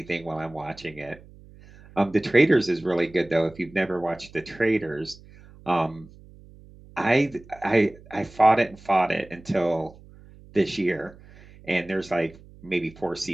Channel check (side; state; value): right; noise; hum, 22 dB below the sound